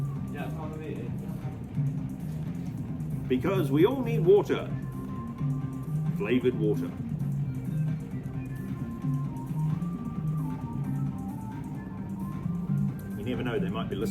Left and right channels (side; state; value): both; identical; correlation 1.00